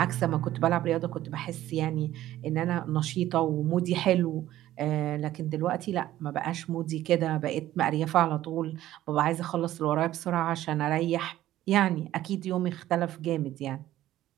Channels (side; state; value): left; quieter; 14.0 dB